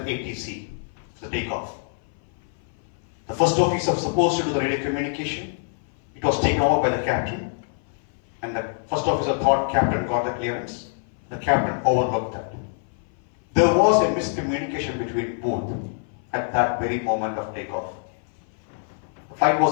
for the takeoff. The first officer was supposed to do the radio communication. It was taken over by the captain, and the first officer thought captain got the clearance. The captain overlooked that. There was a miscommunication between both at that very moment of takeoff. The flight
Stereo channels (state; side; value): silent; right; 57 dB below the other